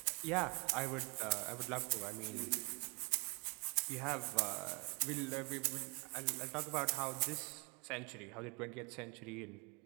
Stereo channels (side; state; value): left; quieter; 31.3 dB